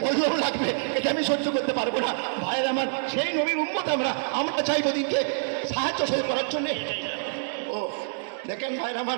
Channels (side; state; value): left; silent; digital silence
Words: বজ্র লাগবে, এটা আমি সহ্য করতে পারবো না। ভাইয়ের আমার, সেই নবীর উম্মত আমরা চাইবো দিনকে সাহায্য করার জন্য। ও দেখেন ভাইয়ের